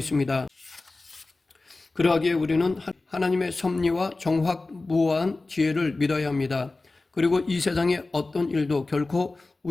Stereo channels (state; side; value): quieter; right; 3.3 dB